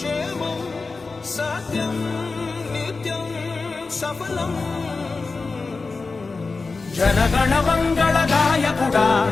సత్యం నిత్యం సఫలం. జనగణ మంగళ నాయకుడా,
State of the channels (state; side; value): quieter; right; 4.0 dB